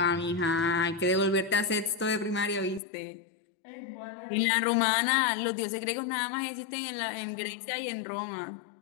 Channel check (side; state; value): right; drops out; at 2.8 s